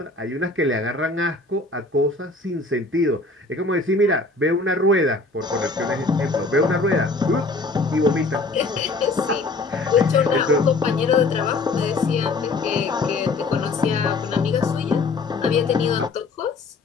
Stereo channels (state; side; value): quieter; right; 3.5 dB